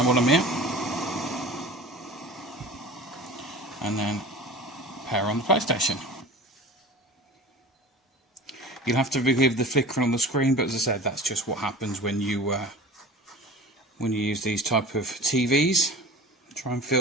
while I'm here, and then power on the PlayStation. You'll have to forgive the flickering on the screen, but as I said, that's just what happens when you use these type of TVs. Try and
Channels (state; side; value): normal; both; correlation 0.38